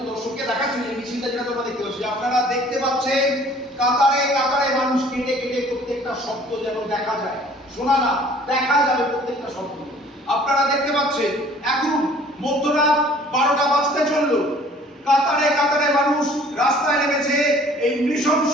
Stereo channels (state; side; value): normal; both; correlation 0.53